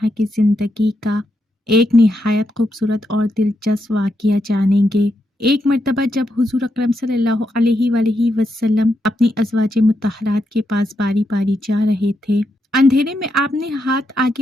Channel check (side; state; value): both; normal; correlation 0.82